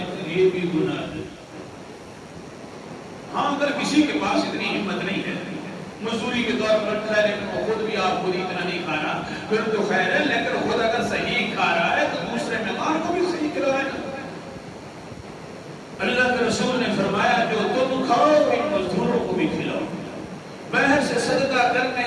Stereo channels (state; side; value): identical; both; correlation 1.00